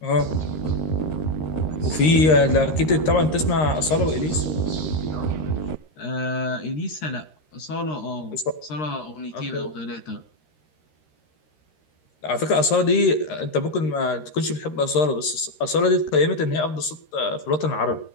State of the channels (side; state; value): right; late; 13 ms